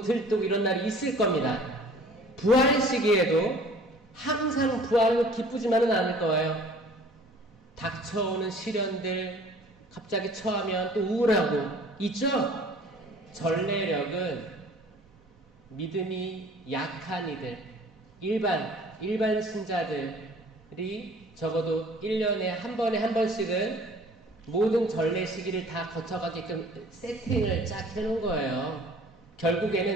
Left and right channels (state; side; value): normal; both; correlation 0.50